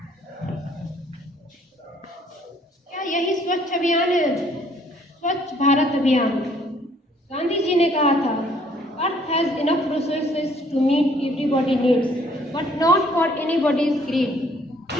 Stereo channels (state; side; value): normal; both; correlation 0.62